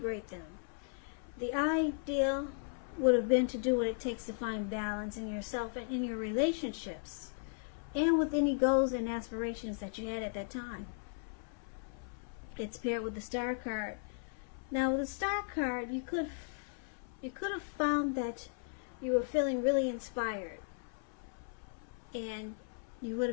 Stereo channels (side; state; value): right; silent; 53 dB below the other